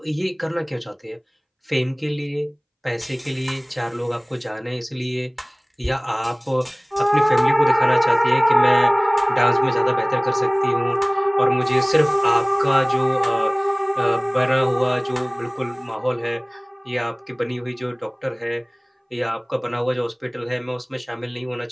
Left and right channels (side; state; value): both; identical; correlation 1.00